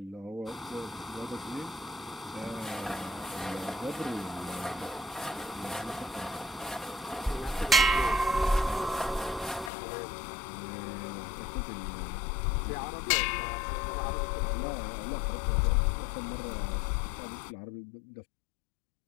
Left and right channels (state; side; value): drops out; right; at 9.7 s